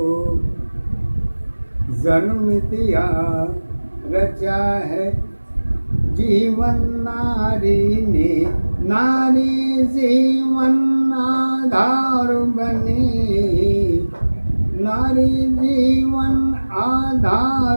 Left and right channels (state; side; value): inverted; both; correlation -1.00